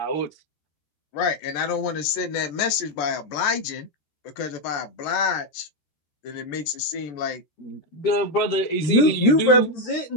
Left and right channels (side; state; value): right; late; 14 ms